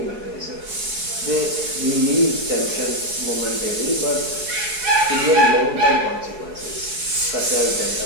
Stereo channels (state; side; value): late; left; 4.7 ms